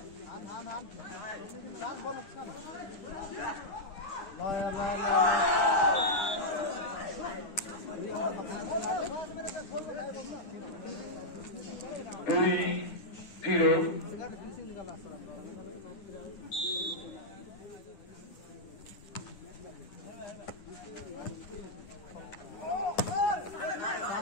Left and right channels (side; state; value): right; late; 9.7 ms